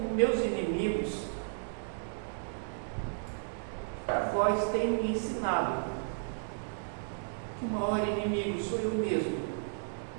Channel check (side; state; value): left; silent; digital silence